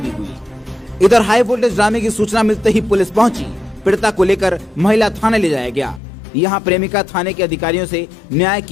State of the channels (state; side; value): drops out; right; at 6.0 s